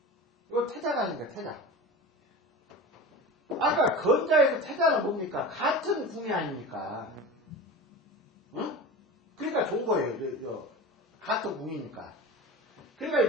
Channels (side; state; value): both; normal; correlation 0.32